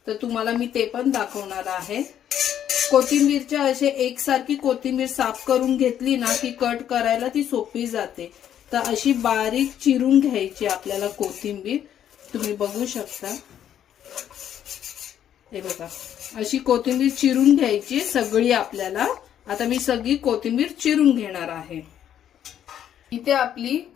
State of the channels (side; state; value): right; quieter; 10.1 dB